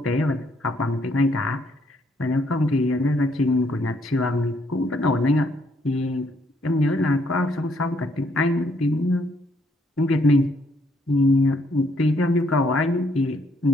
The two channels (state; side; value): normal; both; correlation 0.70